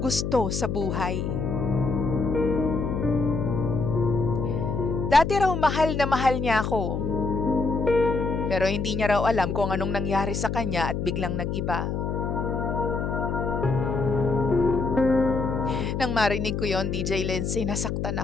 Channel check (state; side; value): noise; left; hum, 2 dB below the sound